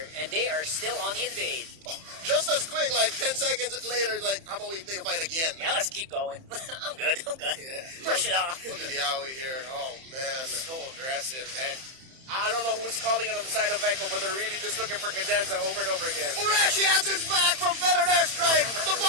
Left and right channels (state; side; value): late; left; 31 ms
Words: And they are still on the invade. Just as quick, 10 seconds later, how about we take a fight again? Yeah, let's keep going. I'm good. Yeah. Push it off. Look at Yowie here. Oh, man. So aggressive. And I don't know who's calling it on the side of Echo, but they're really just looking for Cadenza over and over again. Urashi answers back from Feathered Airstrike. The